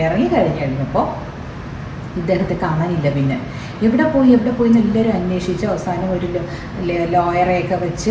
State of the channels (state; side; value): identical; both; correlation 1.00